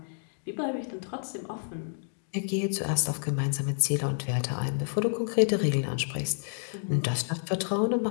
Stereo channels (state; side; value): silent; right; 58 dB below the other